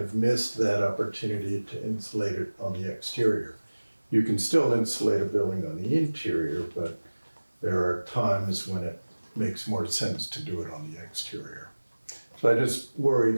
missed that opportunity to insulate it on the exterior. You can still insulate a building on the interior, but there are times when it makes more sense to do it on the exterior. So I just worry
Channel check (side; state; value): both; inverted; correlation -1.00